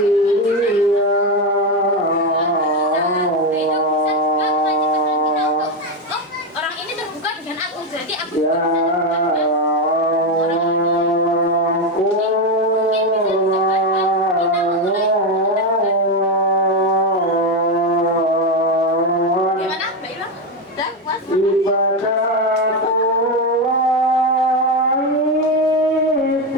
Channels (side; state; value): both; normal; correlation 0.10